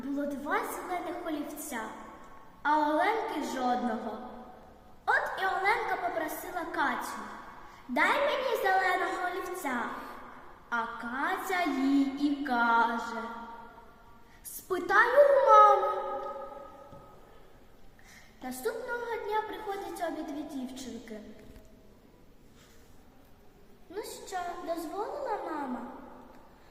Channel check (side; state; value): both; identical; correlation 1.00